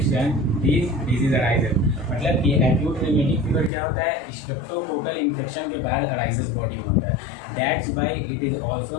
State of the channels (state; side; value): drops out; right; at 3.7 s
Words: this disease arises. मतलब कि acute rheumatic fever क्या होता है, streptococcal infection के बाद arises body में होता है, that's why it is